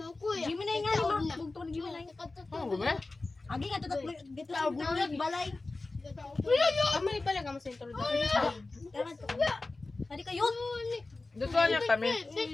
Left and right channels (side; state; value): right; quieter; 3.3 dB